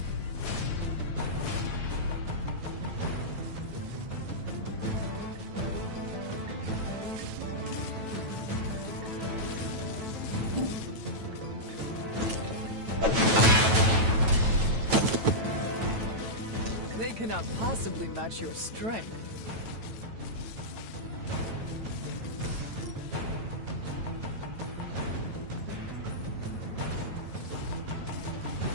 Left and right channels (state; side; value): late; left; 9.1 ms